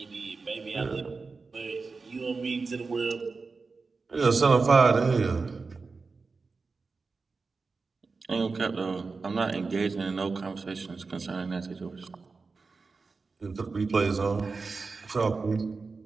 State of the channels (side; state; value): left; quieter; 4.3 dB